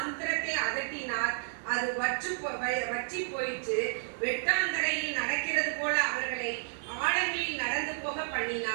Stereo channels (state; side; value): silent; left; digital silence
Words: அதட்டினார், அது வற்றி போயிற்று. வெட்டாந்தரையில் நடக்கிறது போல அவர்களை ஆழங்களில் நடந்து போக